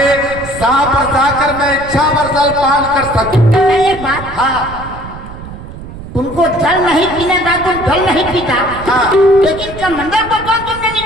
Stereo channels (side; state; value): right; noise; rumble, 13 dB below the sound